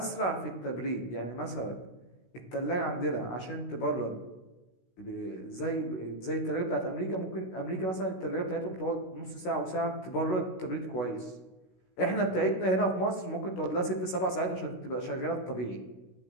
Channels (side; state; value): right; late; 16 ms